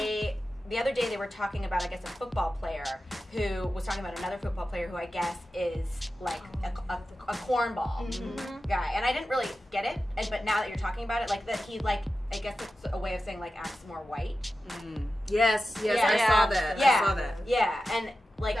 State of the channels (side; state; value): both; normal; correlation 0.93